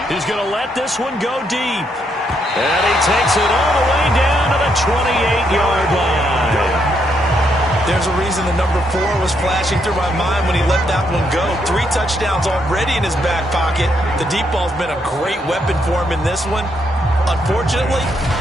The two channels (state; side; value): normal; both; correlation 0.76